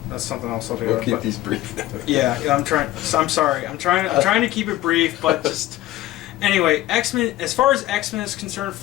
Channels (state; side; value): quieter; right; 15.5 dB